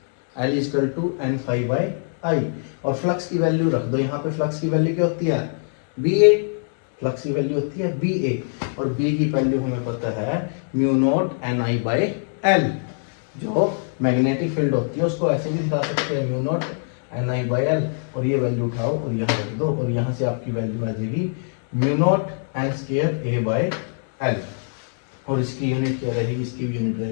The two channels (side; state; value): right; silent; digital silence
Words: L is equal to N phi by I, और फ्लक्स की वैल्यू रख दो यहाँ पे। फ्लक्स की वैल्यू क्या होती है, बी ए, फ्लक्स की वैल्यू होती है बी ए, और बी की वैल्यू हमें पता है mu not an I by L. जो मैग्नेटिक फील्ड होती है उसको ऐसे भी दिखा सकते हैं, mu not an I by L, और ये वैल्यू उठाओ और यहाँ रख दो, और यहाँ से आपकी वैल्यू आ जाएगी mu not an square A by L, और इसकी यूनिट क्या रहेगी, इसकी भी यूनिट